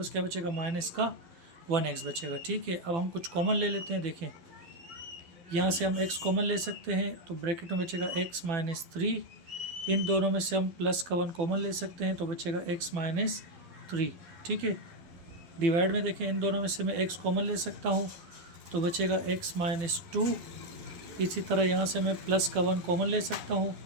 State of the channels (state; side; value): late; left; 12 ms